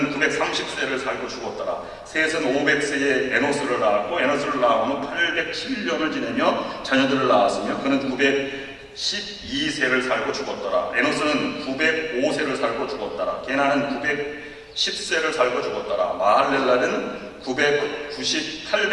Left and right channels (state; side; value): identical; both; correlation 1.00